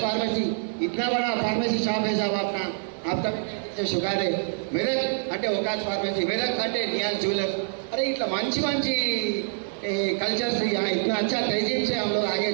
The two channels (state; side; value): silent; left; 61 dB below the other